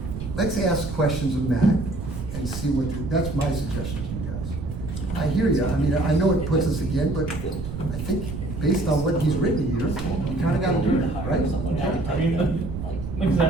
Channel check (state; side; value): noise; right; rumble, 7 dB below the sound